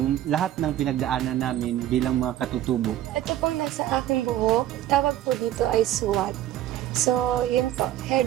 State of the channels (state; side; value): quieter; left; 12.8 dB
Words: lahat ng pinagdaanan namin bilang mga katutubo. Ito pong nasa aking buhok, tawag po dito ay suwat. So, yun po,